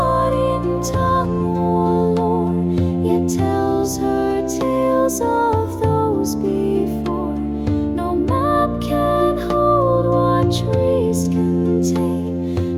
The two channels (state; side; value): identical; both; correlation 1.00